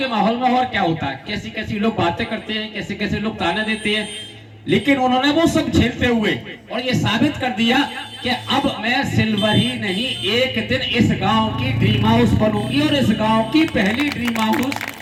माहौल में और क्या होता है, कैसी कैसी लोग बातें करते हैं, कैसे कैसे लोग ताने देते हैं, लेकिन उन्होंने वो सब झेलते हुए और ये साबित कर दिया कि अब मैं सिल्वर ही नहीं, एक दिन इस गांव की ड्रीम हाउस बनूंगी, और इस गांव की पहली ड्रीम हाउस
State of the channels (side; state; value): both; identical; correlation 1.00